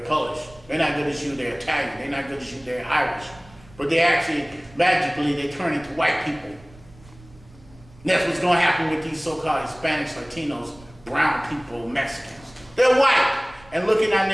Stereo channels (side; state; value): right; noise; rumble, 24 dB below the sound